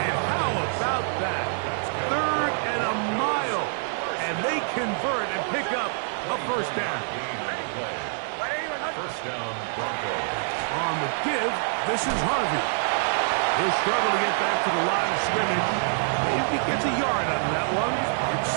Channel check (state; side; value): silent; left; digital silence